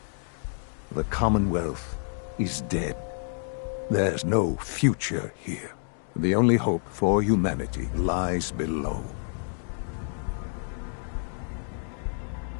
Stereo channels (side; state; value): right; silent; digital silence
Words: The Commonwealth is dead. There's no future here. The only hope for humanity lies below.